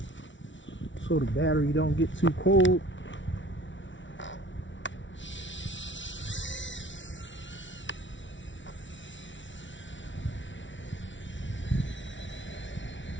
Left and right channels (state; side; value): late; right; 0.55 ms